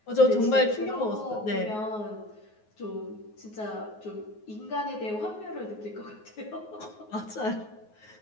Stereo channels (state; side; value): late; right; 9.5 ms